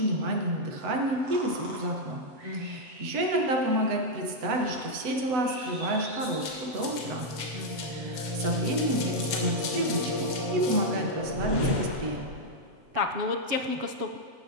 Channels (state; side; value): late; left; 7.9 ms